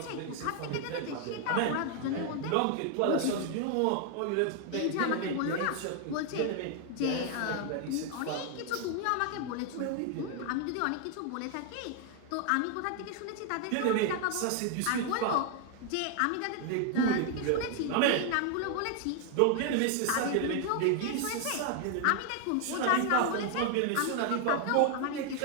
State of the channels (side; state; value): both; different; correlation 0.00